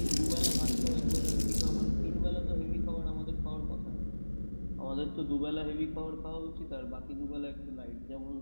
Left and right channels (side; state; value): both; inverted; correlation -1.00